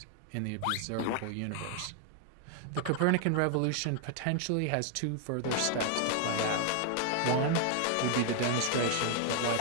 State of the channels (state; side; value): different; both; correlation 0.00